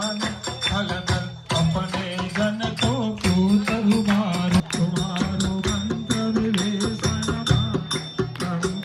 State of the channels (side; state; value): both; identical; correlation 1.00